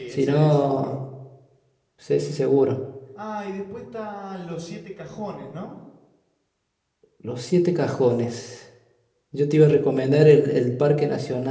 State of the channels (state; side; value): identical; both; correlation 1.00